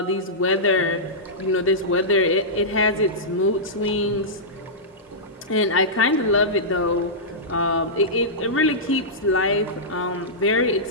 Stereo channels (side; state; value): both; normal; correlation -0.14